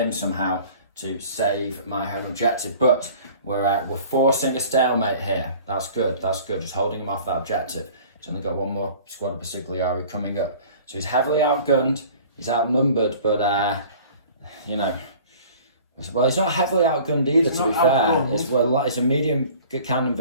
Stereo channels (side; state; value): both; inverted; correlation -0.47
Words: somehow to save my home objective, but we're forcing a stalemate here. That's good, just holding him off that objective. He's only got 1 more squad of Consigliere coming up, so he's heavily outgunned, he's outnumbered, but you know, well, he's not heavily outgunned either, to be fair. It's a medium cannon